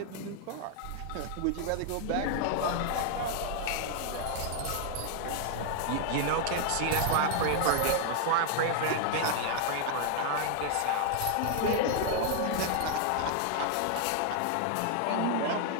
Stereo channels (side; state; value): both; different; correlation 0.00